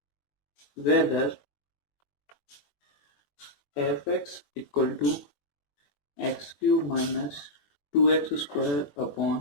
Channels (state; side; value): late; right; 21 ms